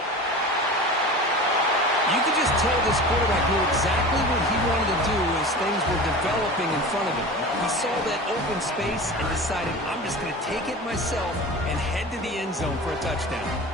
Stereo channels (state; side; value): normal; both; correlation 0.34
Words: You could just tell this quarterback knew exactly what he wanted to do as things were developing in front of him. He saw that open space and decided, I'm just going to take it myself and head to the end zone for a